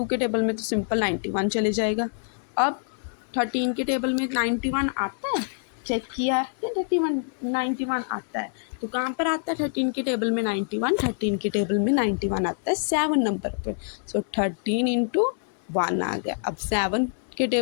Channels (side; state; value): right; silent; digital silence